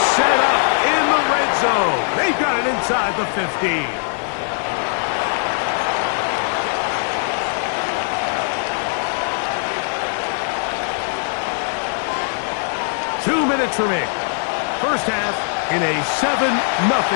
up in the red zone. They've got it inside the 15. Two minutes remaining. First half in a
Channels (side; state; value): right; silent; 66 dB below the other